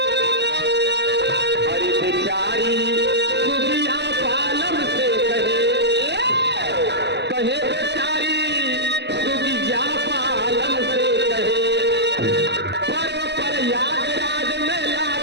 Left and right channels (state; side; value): late; left; 0.50 ms